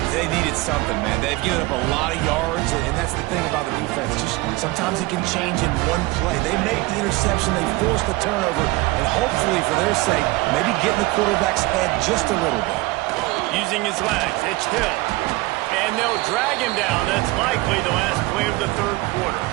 They needed something, man. They've given up a lot of yards, and that's the thing about the defense. Just sometimes it can change in one play. They make the interception, they force the turnover, and hopefully, for their sake, maybe get in the quarterback's head just a little bit. Using his legs, it's Hill. And they'll drag him down. That's likely the last play of the third quarter.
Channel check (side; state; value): left; quieter; 21.3 dB